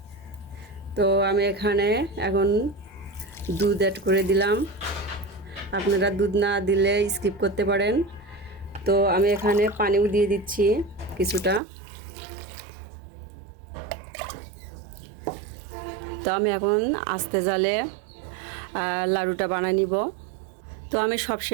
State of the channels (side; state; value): left; drops out; at 11.6 s